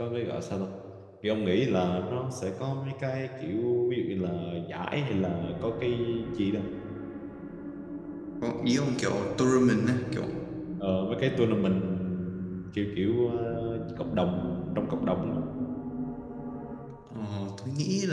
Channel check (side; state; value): both; identical; correlation 1.00